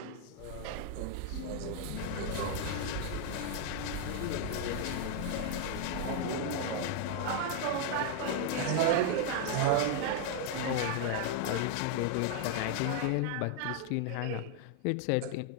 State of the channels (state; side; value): different; both; correlation 0.00